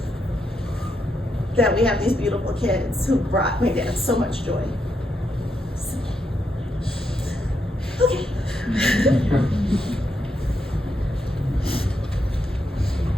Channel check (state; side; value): normal; both; correlation 0.81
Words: That we have these beautiful kids who brought my dad so much joy. I'm